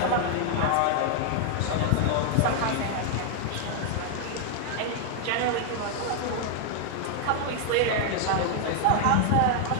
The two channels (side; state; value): both; different; correlation 0.00